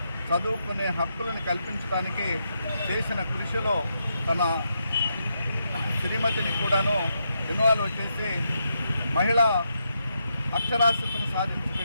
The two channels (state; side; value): inverted; both; correlation -0.82